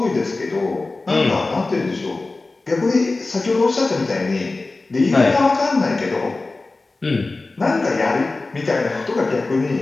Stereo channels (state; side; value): quieter; right; 3.4 dB